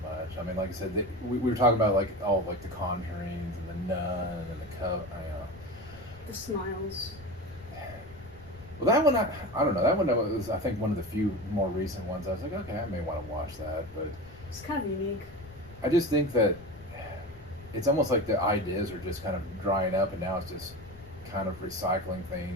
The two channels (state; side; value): noise; left; rumble, 20 dB below the sound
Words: much. I mean, like I said, we were talking about like all like the Conjurings and the Nun and the Coven. The Smiles. Well, that one, I don't know. That one was, I think, one of the few more recent ones. I was like, okay, I may want to watch that, but It's kind of unique. I just think that it's almost like the ideas are just kind of drying up, and now it's just kind of recycling